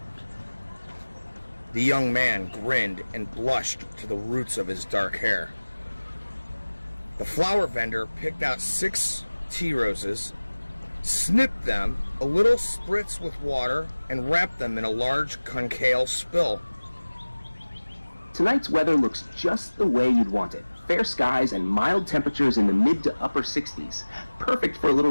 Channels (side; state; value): both; inverted; correlation -1.00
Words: The young man grinned and blushed to the roots of his dark hair. The flower vendor picked out 6 tea roses, snipped them, a little spritz with water, and wrapped them in a large concave spill. Tonight's weather looks just the way you'd want it. fair skies and mild temperatures in the mid to upper 60s. Perfect for a little